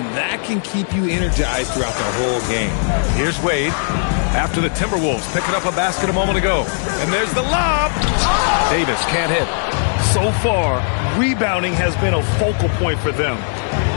that can keep you energized throughout the whole game. Here's Wade after the Timberwolves picking up a basket a moment ago. And there's the lob. Davis can't hit. So far, rebounding has been a focal point for them.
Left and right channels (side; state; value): right; silent; digital silence